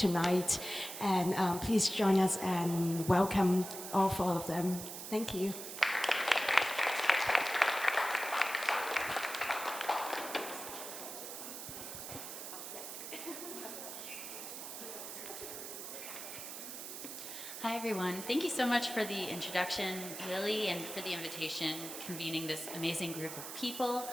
And please join us and welcome all four of them. Thank you. Hi, everyone. Thank you so much for the introduction, Lily, and for the invitation, convening this amazing group of people.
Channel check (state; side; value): noise; right; hiss, 8 dB below the sound